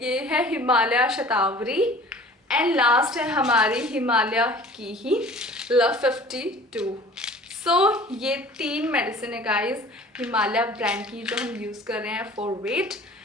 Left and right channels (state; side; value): normal; both; correlation 0.46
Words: है हिमालय शतावरी एंड लास्ट है हमारी हिमालय की ही लव 52। सो ये 3 मेडिसिन है गाइस हिमालय ब्रांड की जो हम यूज़ कर रहे हैं फॉर वेट